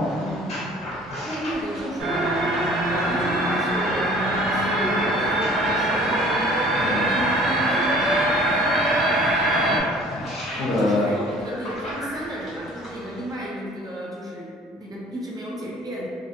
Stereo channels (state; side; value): normal; both; correlation 0.51